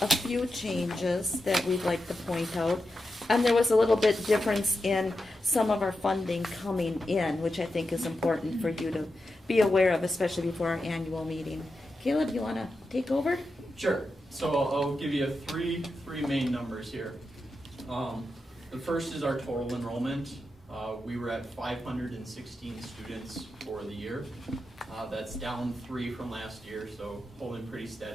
a few changes that we'd like to point out. And there was a little bit difference in some of our funding coming in, which I think is important for you to be aware of, especially before our annual meeting. Caleb, you want to take over? Sure. So I'll give you three main numbers here. The first is our total enrollment. We were at 516 students for the year. That's down 3 from last year, so holding pretty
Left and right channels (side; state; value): both; normal; correlation 0.89